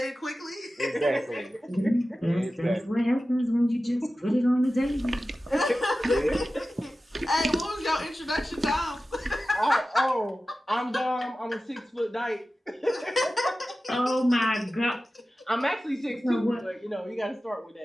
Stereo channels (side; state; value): both; normal; correlation 0.95